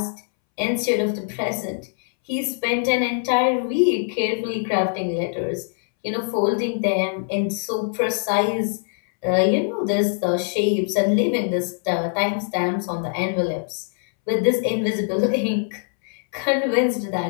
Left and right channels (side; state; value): right; silent; 63 dB below the other